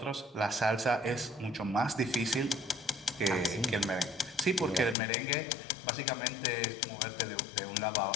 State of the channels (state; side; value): drops out; right; at 5.0 s